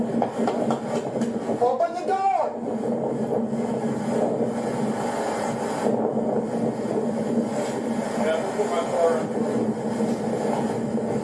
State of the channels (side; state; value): both; identical; correlation 1.00